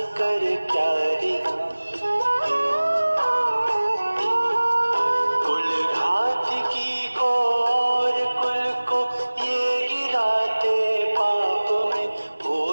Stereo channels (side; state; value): both; inverted; correlation -1.00